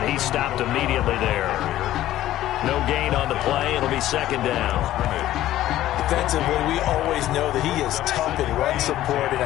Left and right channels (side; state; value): right; quieter; 13.9 dB